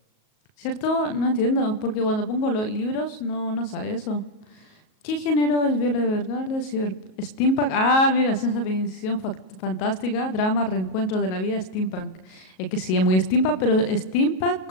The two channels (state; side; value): late; right; 38 ms